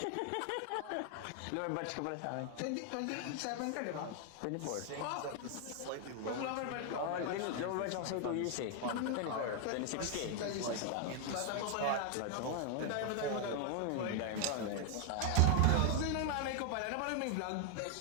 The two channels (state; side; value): different; both; correlation 0.00